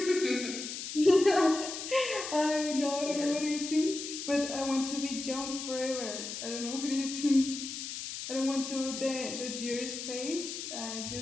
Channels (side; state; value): left; noise; hiss, 7 dB below the sound